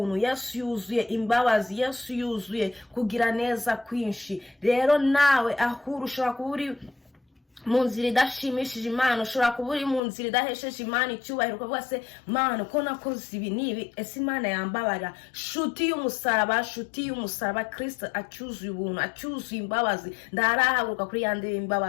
Yesu yuzuye imbabazi, Yesu yuzuye kugira neza kwinshi. Rero nawe ahuru ushobora kuba uri mu nzira idashimishije Imana, ushobora kuba uri mu nzira idahesheje Imana icyubahiro, ukavuga se Mana ko nakoze ibi nibi, ese Imana yambabara? Shuti y'umusaraba Kristo acyuzuye ubuntu, acyuzuye imbabazi, ndarahaguruka kuri yande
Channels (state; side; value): drops out; right; at 10.0 s